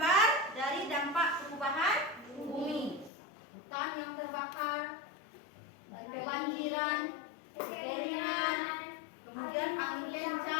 dari dampak perubahan bumi. Hutan yang terbakar, kebanjiran, kekeringan, kemudian angin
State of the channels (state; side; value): drops out; right; at 3.1 s